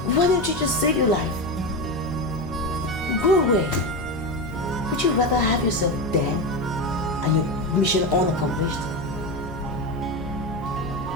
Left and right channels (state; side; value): noise; left; hum, 14 dB below the sound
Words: Why don't you just save your life? Go away. Would you rather have yourself dead and your mission unaccomplished?